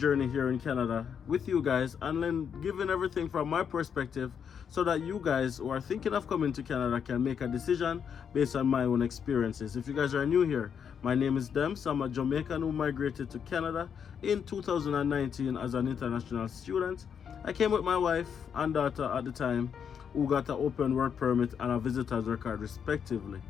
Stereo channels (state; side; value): quieter; right; 7.4 dB